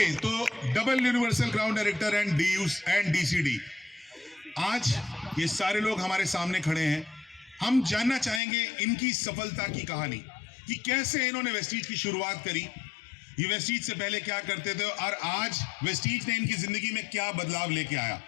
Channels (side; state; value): right; drops out; at 8.4 s